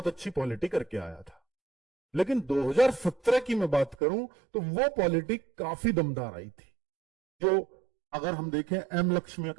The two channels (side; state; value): left; drops out; at 4.0 s